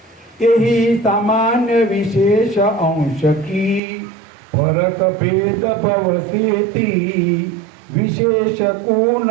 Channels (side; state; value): left; drops out; at 3.8 s